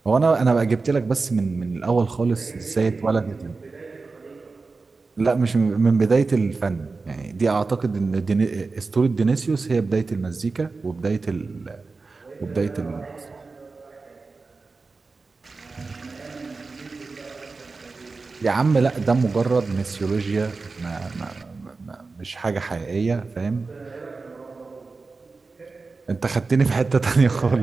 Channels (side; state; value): left; quieter; 4.0 dB